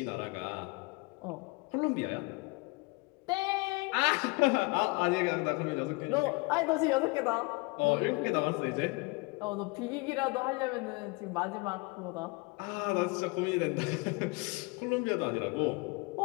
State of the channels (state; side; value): quieter; right; 26.8 dB